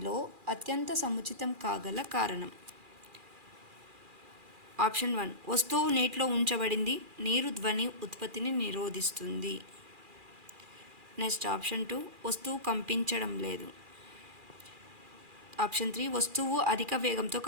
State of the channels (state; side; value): late; left; 2.4 ms